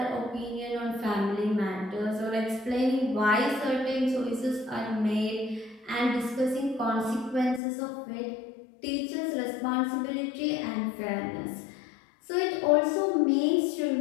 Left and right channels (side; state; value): right; drops out; at 7.6 s